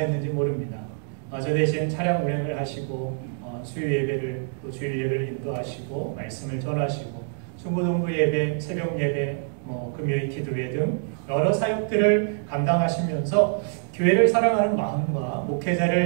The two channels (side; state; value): left; silent; digital silence